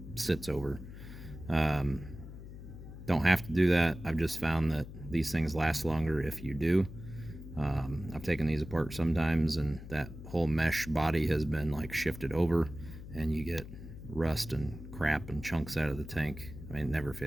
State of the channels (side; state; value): left; noise; hum, 13 dB below the sound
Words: sits over. Don't have to do that. I've just found that these things last longer if you do. I've taken these apart sometimes and that whole mesh body has been like shifted over and you get rust and crap and chunks out of the tank. I mean, it never